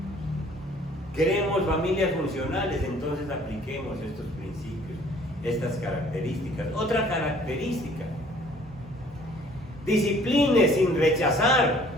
Queremos familias funcionales, entonces apliquemos estos principios, estas características. Otra característica: discipline sin rechazar.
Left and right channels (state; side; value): normal; both; correlation 0.55